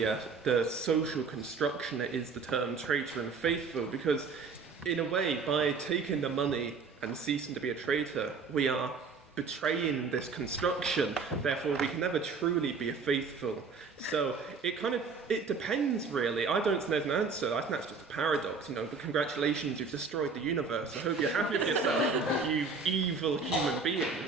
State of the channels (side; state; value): left; quieter; 4.8 dB